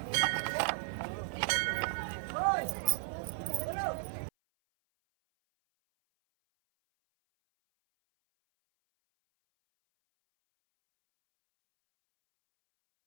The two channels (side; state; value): left; silent; 55 dB below the other